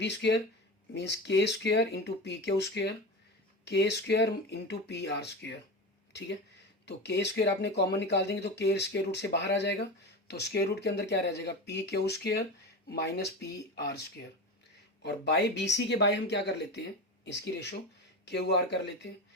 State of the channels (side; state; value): both; normal; correlation 0.25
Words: square means K square into P Q square, K square into P R square, ठीक है। तो के स्क्वेयर आपने कॉमन निकाल देंगे तो के स्क्वेयर रूट से बाहर आ जाएगा, तो स्क्वेयर रूट के अंदर क्या रह जाएगा, P Q square minus P R square, और बाय बी सी के बाय हम क्या कर लेते हैं, इसकी रेशो क्यू आर कर लेते हैं,